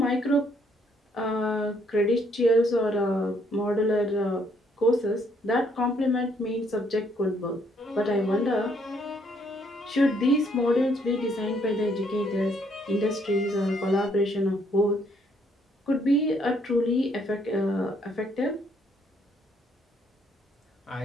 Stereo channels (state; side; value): normal; both; correlation 0.69